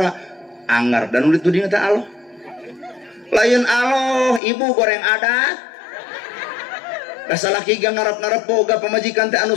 anggar dan udah tuding teh Allah. Lain Allah, ibu goreng adat. Kasalaki gang ngarep-ngarep boga pamajikan teh anu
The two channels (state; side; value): drops out; right; at 4.4 s